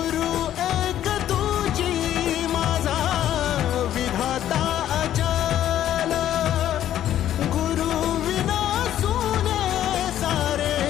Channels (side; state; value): right; quieter; 11.6 dB